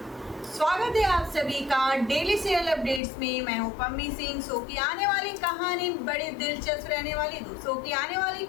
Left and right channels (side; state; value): right; drops out; at 3.0 s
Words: स्वागत है आप सभी का डेली सीरियल अपडेट्स में। मैं हूं पम्मी सिंह। शो की आने वाली कहानी बड़ी दिलचस्प रहने वाली। शो की आने वाली